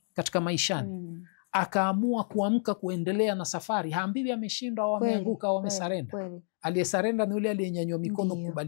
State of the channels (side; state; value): right; silent; digital silence